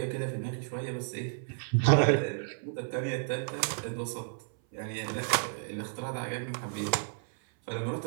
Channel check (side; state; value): left; silent; 56 dB below the other